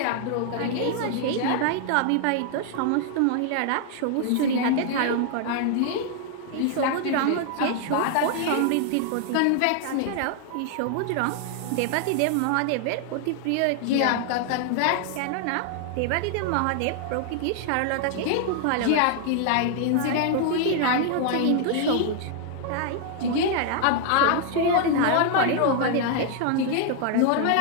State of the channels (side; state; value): both; different; correlation 0.00